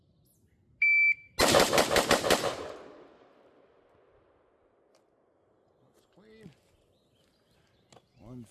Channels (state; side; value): identical; both; correlation 1.00